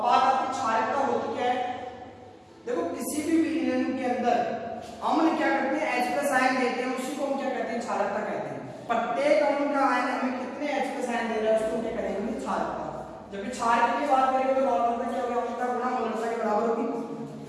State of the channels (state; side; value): identical; both; correlation 1.00